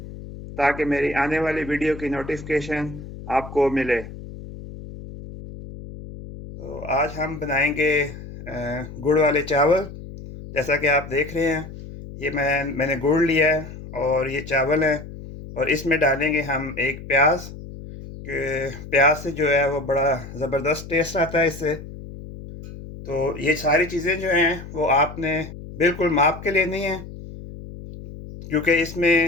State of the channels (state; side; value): noise; left; hum, 13 dB below the sound